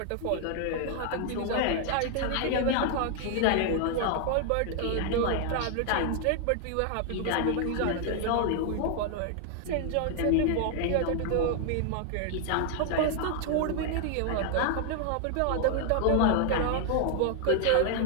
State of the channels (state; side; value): different; both; correlation 0.00